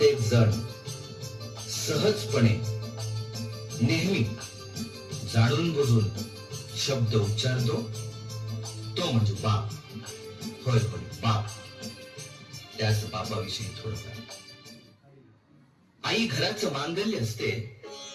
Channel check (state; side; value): identical; both; correlation 1.00